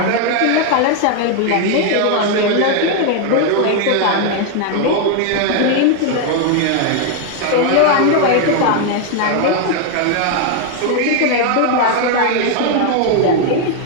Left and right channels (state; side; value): different; both; correlation 0.01